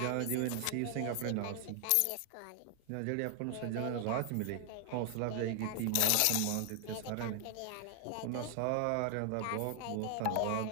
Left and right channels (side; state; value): both; different; correlation 0.00